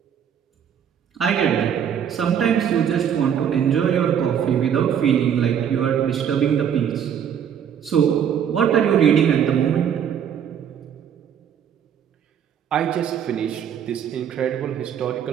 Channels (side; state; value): left; quieter; 8.6 dB